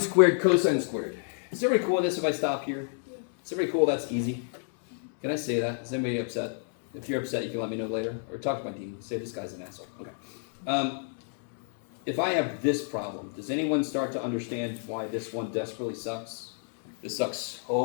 squared cosine squared, is everybody cool with this if I stop here? Is everybody cool? That's easy. Can I say that? Is anybody upset? If you're upset, you can let me know later. Or talk to my dean. Say this guy's an asshole. Okay. If I have this problem, does anyone start to understand why this one desperately sucks? This sucks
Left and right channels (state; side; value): silent; right; 58 dB below the other